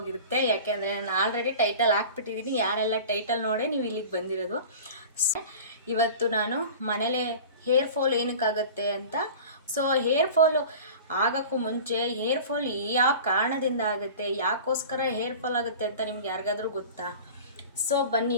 ಯಾಕೆಂದರೆ ನಾನು ಆಲ್ರೆಡಿ ಟೈಟಲ್ ಹಾಕ್ಬಿಟ್ಟಿದ್ದೀನಿ. ಯಾರೆಲ್ಲ ಟೈಟಲ್ ನೋಡೇ ನೀವು ಇಲ್ಲಿಗೆ ಬಂದಿರೋದು. ಇವತ್ತು ನಾನು ಮನೇಲೆ ಹೇರ್ ಫಾಲ್ ಏನಕ್ಕಾಗತ್ತೆ ಅಂತ. ಸೊ ಹೇರ್ ಫಾಲು ಆಗೋಕ್ಕೂ ಮುಂಚೆ ಹೇರ್ ಫಾಲ್ ಯಾವ ಕಾರಣದಿಂದ ಆಗುತ್ತೆ, ಯಾಕೋಸ್ಕರ ಹೇರ್ ಫಾಲ್ ಆಗುತ್ತೆ ಅಂತ ನಿಮ್ಗೆ ಯಾರಿಗಾದ್ರೂ ಗೊತ್ತಾ? ಸೊ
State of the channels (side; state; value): both; inverted; correlation -0.38